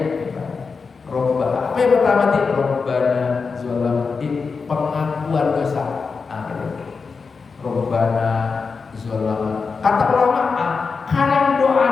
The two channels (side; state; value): right; quieter; 4.9 dB